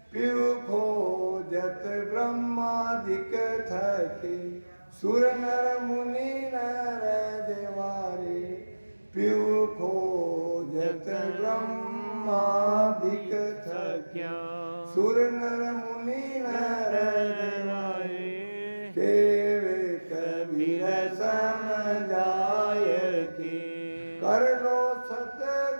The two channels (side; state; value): both; inverted; correlation -1.00